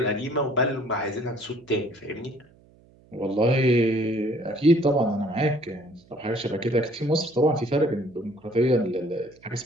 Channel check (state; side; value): noise; right; hum, 29 dB below the sound